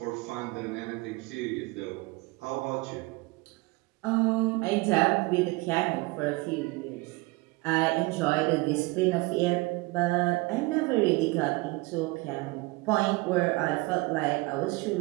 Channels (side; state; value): left; quieter; 23.9 dB